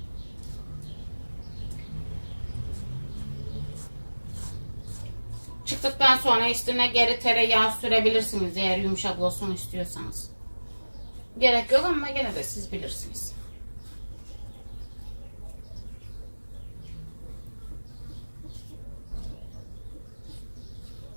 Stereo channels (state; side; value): inverted; both; correlation -1.00